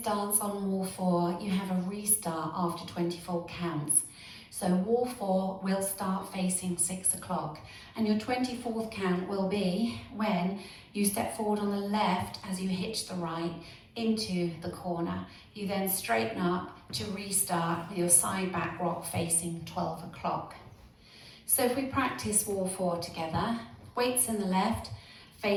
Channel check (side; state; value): both; identical; correlation 1.00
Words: on wall 4, you have a restart after 24 counts. So wall 4 will start facing 6 o'clock, and your 24th count will be when you step forward on the left as you hitch the right into the corner. You then straighten up to restart with your side back rock facing 12 o'clock. So if we practice wall 4 together, weights in the left,